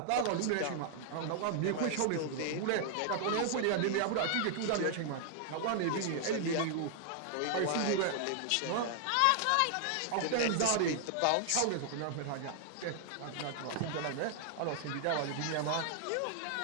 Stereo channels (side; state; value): both; different; correlation -0.01